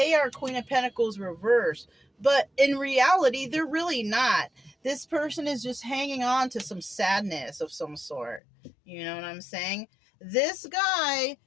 are Queen of Pentacles reversed. But in reality, they're really not. This person is just hanging on to some sadness of some sort. You know what I'm saying? This guy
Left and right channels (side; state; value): right; drops out; at 8.4 s